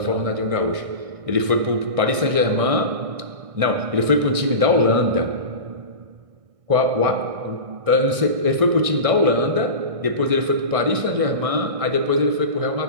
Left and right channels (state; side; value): late; left; 1.6 ms